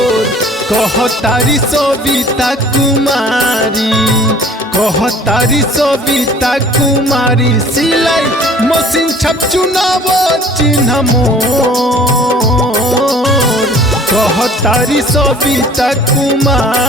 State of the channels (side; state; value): both; normal; correlation 0.50